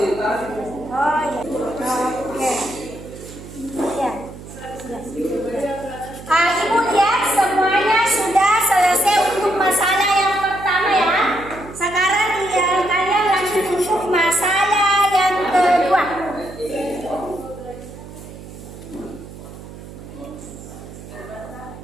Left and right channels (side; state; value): right; noise; hum, 15 dB below the sound